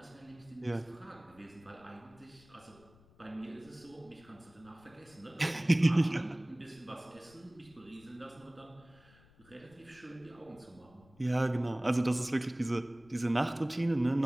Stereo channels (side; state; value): left; noise; rumble, 26 dB below the sound